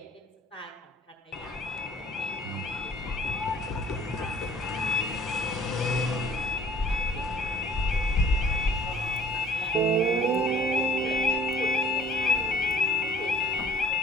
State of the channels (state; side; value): normal; both; correlation 0.53